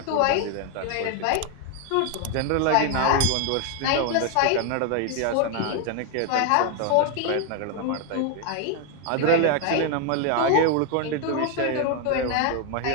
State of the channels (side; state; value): both; different; correlation 0.01